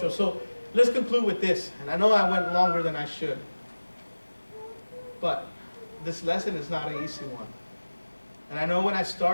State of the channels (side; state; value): both; inverted; correlation -1.00